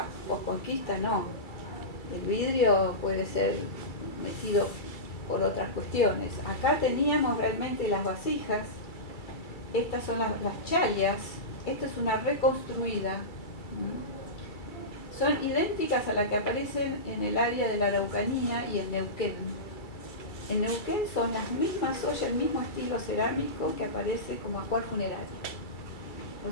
posconquista, no. El vidrio puede ser metido por otras cuestiones. Acá teníamos realmente las vasijas, estas son las chalias, esta es una reconstruida. Son idénticas a las que aparecen en el área de la Araucanía y en Neuquén. En Neuquén son las mismas ollas, el mismo estilo cerámico que aparece como ajuar funerario.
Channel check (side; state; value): right; late; 2.3 ms